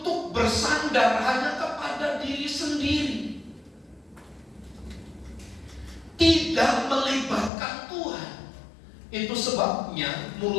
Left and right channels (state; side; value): drops out; right; at 7.5 s